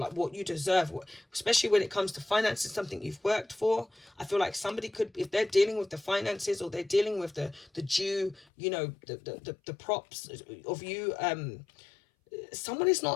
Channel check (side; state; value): right; drops out; at 8.5 s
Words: what you deserve, especially when it comes to finances, something you've worked for. I feel like somebody could, if they're dealing with the finances or they're dealing with the due, you know, the props of you, someone is